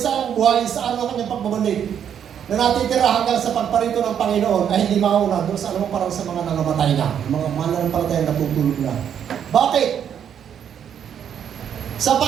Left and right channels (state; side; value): quieter; left; 8.7 dB